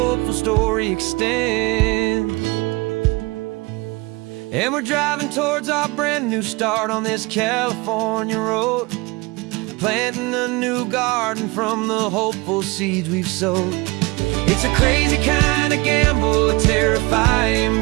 story extends. And we're driving towards our brand new start on this California road, planting a new garden from the hopeful seeds we've sowed. It's a crazy kind of gamble, a terrifying,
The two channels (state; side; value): quieter; left; 24.5 dB